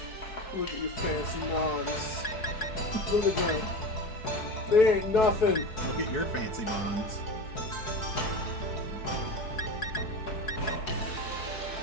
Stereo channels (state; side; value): late; right; 4.6 ms